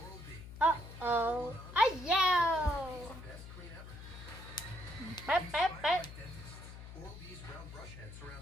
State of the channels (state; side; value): noise; left; hum, 13 dB below the sound